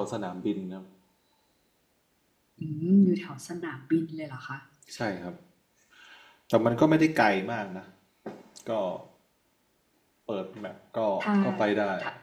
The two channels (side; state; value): both; identical; correlation 1.00